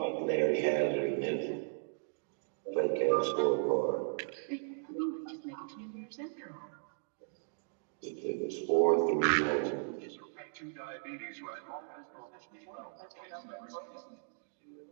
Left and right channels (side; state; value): left; silent; digital silence